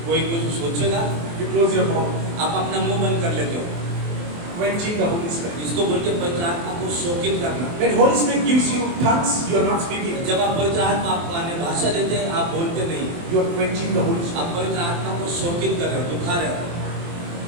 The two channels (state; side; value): late; left; 23 ms